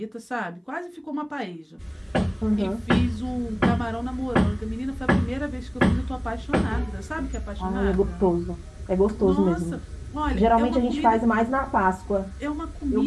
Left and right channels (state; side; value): identical; both; correlation 1.00